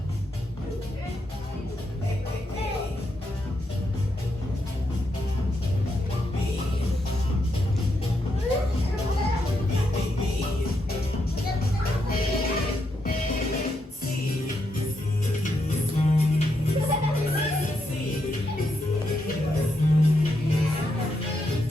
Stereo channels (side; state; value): both; normal; correlation 0.81